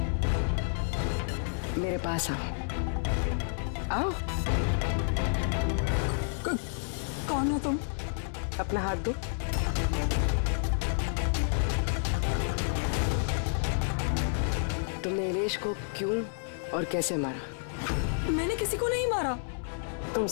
मेरे पास आओ। आओ। कौन हो तुम? अपना हाथ दो। तुमने इलेश को क्यों और कैसे मारा? मैंने किसी को नहीं मारा। तुम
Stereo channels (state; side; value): silent; right; 58 dB below the other